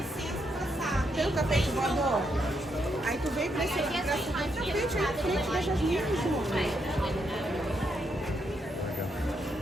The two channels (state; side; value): normal; both; correlation 0.79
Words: Tem o tapete voador? Aí tu vem pra esse tapete aí na frente da Jasmine, João.